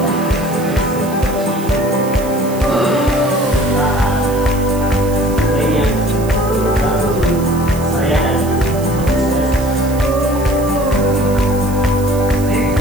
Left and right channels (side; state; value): right; noise; hiss, 16 dB below the sound